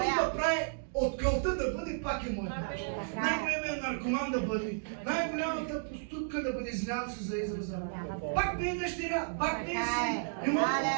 алелуя. да прави от кълта да бъде, пак е моя. Най-големият наркоман да бъде, най-голямата проститутка да бъде, извинявам се за израза. Пак ми е дъщеря, пак ми е син. Не мога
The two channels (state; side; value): silent; left; digital silence